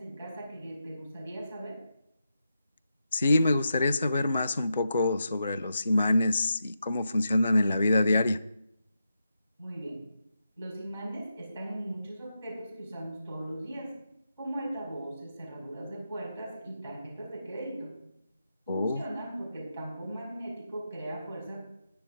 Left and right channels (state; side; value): inverted; both; correlation -0.86